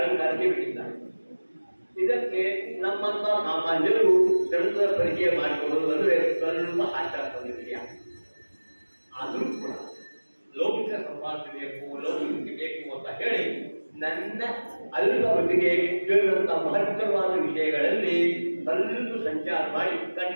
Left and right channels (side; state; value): both; inverted; correlation -1.00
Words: ಬಿಟ್ಟಿದ್ದಾರೆ. ಇದಕ್ಕೆ ನಮ್ಮಂತ ಸಾಮಾನ್ಯರು ಗ್ರಂಥದ ಪರಿಚಯ ಮಾಡಿಕೊಳ್ಳುವುದು ಅಂದರೆ ಸ್ವಲ್ಪ ಆಚಾರ ವಿಷಯ. ಆದರೂ ಕೂಡ ಲೌಕಿಕ ಸಂಪಾದನೆ ಬೇಕು, ಲೌಕಿಕ ಬೇಕು ಅಂತ ಹೇಳಿ ನನ್ನ ಅಲ್ಪ ಮಟ್ಟಿಗೆ ಕೇಳಿದಂಥ ಮಹತ್ತರವಾದ ವಿಷಯಗಳಲ್ಲಿ ಸ್ವಲ್ಪ ಸಂಚಾರ ಮಾಡಿ